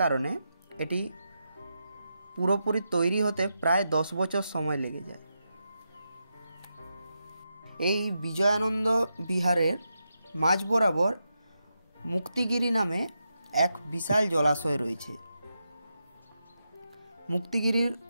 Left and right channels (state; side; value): inverted; both; correlation -0.86